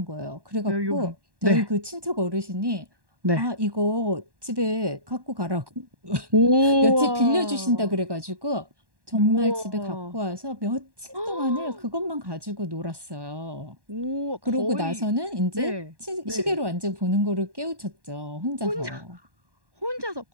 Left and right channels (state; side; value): late; left; 1.1 ms